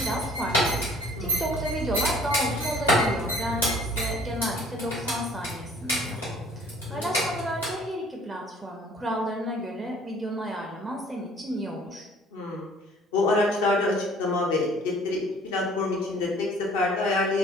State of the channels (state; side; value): normal; both; correlation 0.54